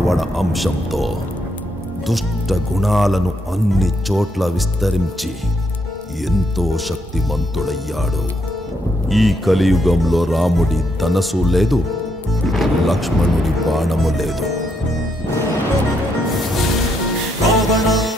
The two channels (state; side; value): normal; both; correlation 0.76